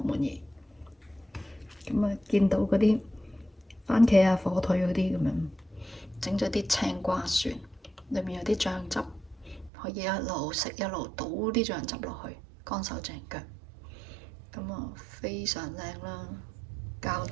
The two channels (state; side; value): drops out; left; at 9.7 s